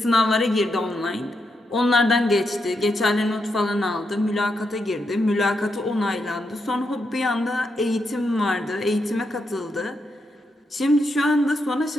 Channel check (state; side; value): normal; both; correlation 0.83